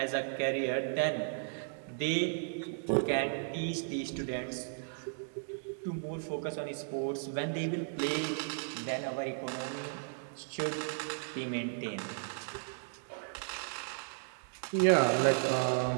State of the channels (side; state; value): left; silent; digital silence